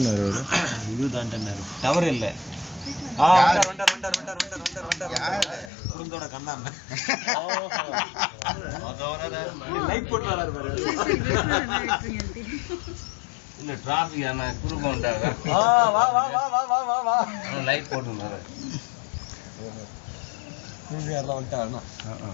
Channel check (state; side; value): drops out; right; at 5.7 s